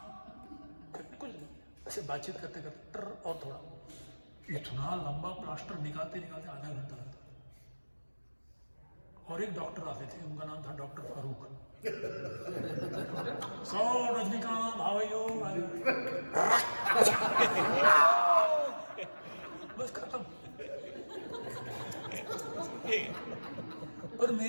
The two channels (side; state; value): both; inverted; correlation -1.00